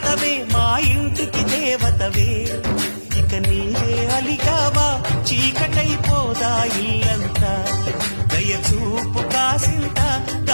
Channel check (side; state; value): both; inverted; correlation -1.00